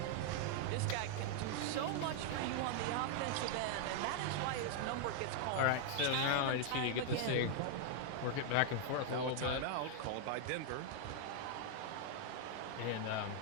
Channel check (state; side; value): different; both; correlation 0.00